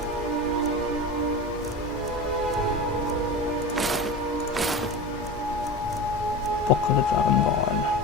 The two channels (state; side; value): normal; both; correlation 0.28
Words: Book of the Dragonborn.